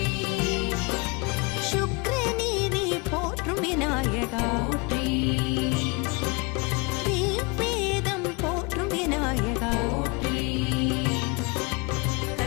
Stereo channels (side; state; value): right; quieter; 28.7 dB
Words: சுக்ரநீதி போற்றும் விநாயகா போற்றி ரிக்வேதம் போற்றும் விநாயகா போற்றி